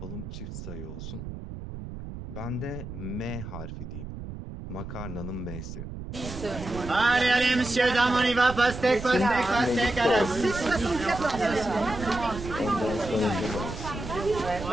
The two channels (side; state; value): right; noise; rumble, 10 dB below the sound